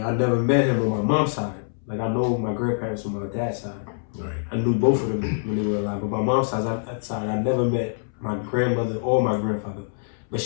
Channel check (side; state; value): right; silent; 62 dB below the other